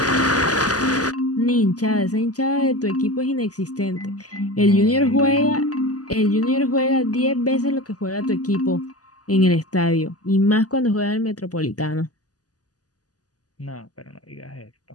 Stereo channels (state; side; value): late; right; 0.67 ms